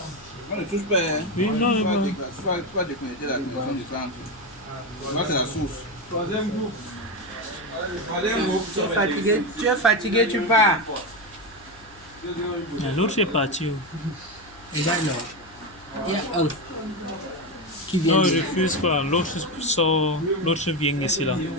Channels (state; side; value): noise; left; hum, 25 dB below the sound